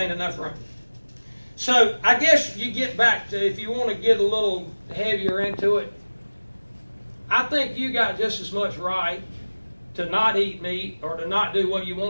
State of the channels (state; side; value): inverted; both; correlation -1.00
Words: enough room. So, I guess you get back to, if you want to get a little heavier into it, I think you got just as much right to not eat meat or to not do what you